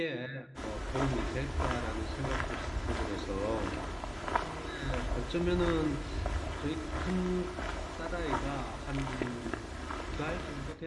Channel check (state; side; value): identical; both; correlation 1.00